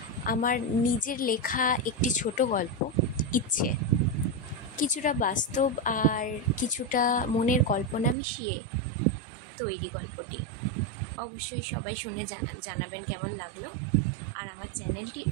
আমার নিজের লেখা একটি ছোট গল্প, ইচ্ছে। কিছুটা বাস্তব আর কিছুটা মনের কল্পনা মিশিয়ে তৈরি গল্পটি। অবশ্যই সবাই শুনে জানাবেন কেমন লাগলো, আর আমার চ্যানেলটি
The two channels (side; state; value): left; drops out; at 8.2 s